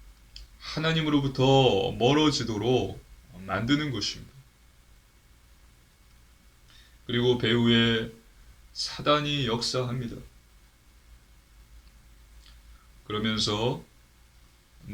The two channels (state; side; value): identical; both; correlation 1.00